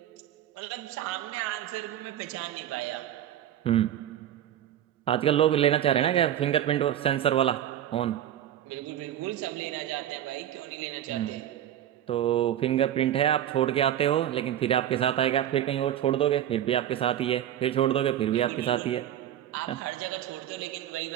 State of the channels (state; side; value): quieter; left; 11.3 dB